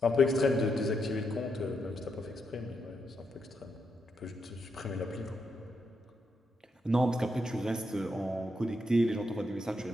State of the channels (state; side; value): normal; both; correlation 0.81